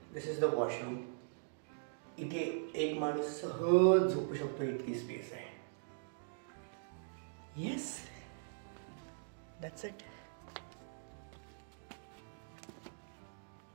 this is the washroom. इथे एक माणूस सहज झोपू शकतो इतकी स्पेस आहे. Yes, that's it.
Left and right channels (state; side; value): silent; left; digital silence